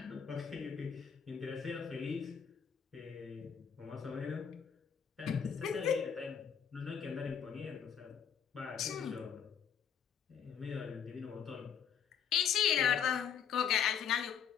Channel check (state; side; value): quieter; right; 7.7 dB